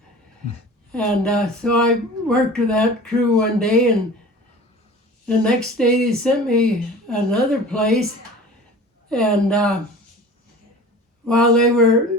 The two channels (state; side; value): normal; both; correlation 0.40